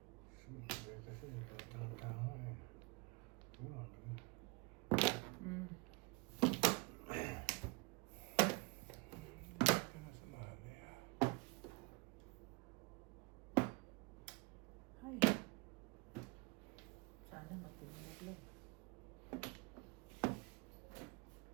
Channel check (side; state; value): left; quieter; 27.4 dB